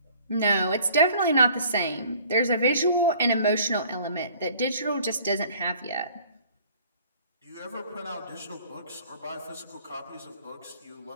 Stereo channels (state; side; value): inverted; both; correlation -0.53